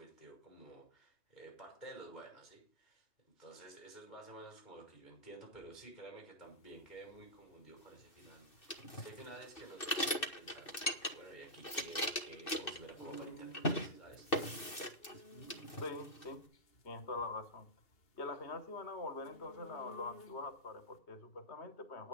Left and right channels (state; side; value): late; right; 2.6 ms